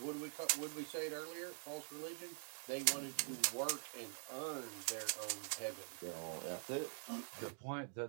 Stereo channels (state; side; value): silent; left; digital silence